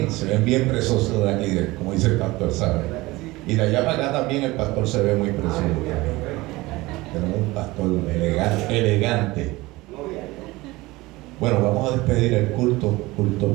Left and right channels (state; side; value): quieter; left; 20.6 dB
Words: se ven bien preciosos de aquí, como dice el pastor, ¿sabe? Y de allá para acá también el pastor se ve muy precioso. Tenemos un pastor elegante. Bueno, vamos a despedir el culto